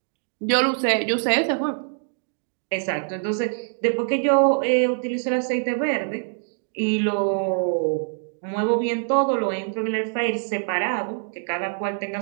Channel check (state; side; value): silent; left; digital silence